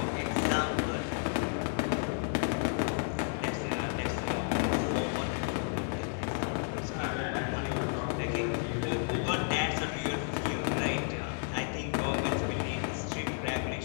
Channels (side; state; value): right; silent; 56 dB below the other